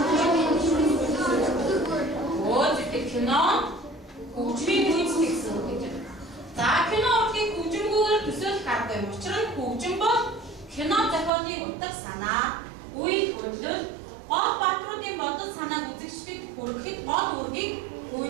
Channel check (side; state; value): left; drops out; at 11.3 s